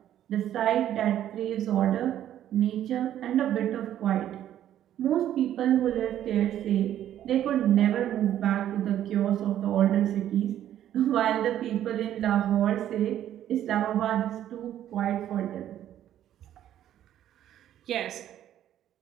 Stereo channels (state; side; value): quieter; left; 11.5 dB